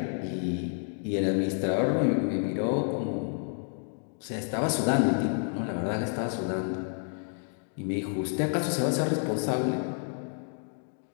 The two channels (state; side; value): silent; right; 56 dB below the other